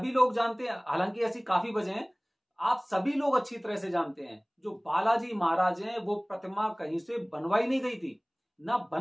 लोग जानते हैं, हालांकि ऐसी काफी वजह हैं, आप सभी लोग अच्छी तरह से जानते हैं, जो बालाजी महाराज हैं वो प्रतिमा कहीं से बनवाई नहीं गई थी, ना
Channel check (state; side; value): identical; both; correlation 1.00